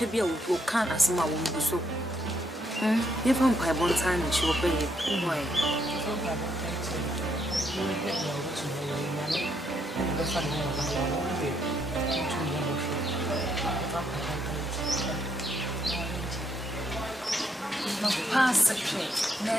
be a who can't as my own so. If I'm by one time, she will pay it. Pass the train,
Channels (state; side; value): normal; both; correlation 0.75